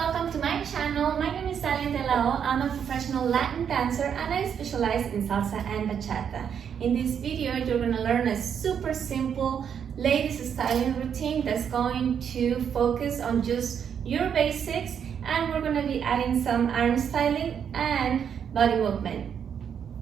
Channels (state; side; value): quieter; left; 7.9 dB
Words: welcome to my channel. My name is Dalia. I'm a professional Latin dancer and I specialize in salsa and bachata. In this video, you're going to learn a super simple ladies styling routine that's going to focus on just your basics, and we're going to be adding some arm styling and body movement.